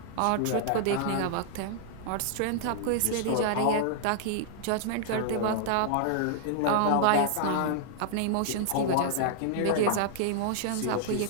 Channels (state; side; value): different; both; correlation -0.01